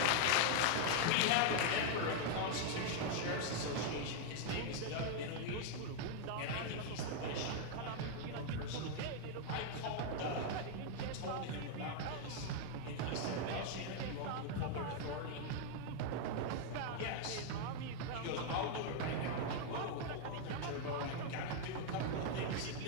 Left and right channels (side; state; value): both; different; correlation 0.00